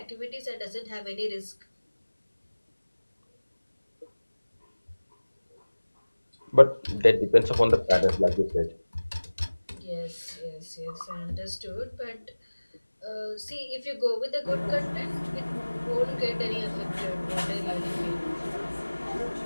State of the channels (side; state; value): both; inverted; correlation -1.00